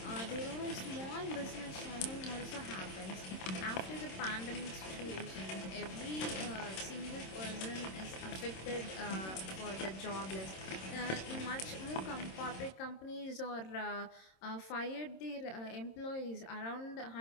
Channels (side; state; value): right; late; 26 ms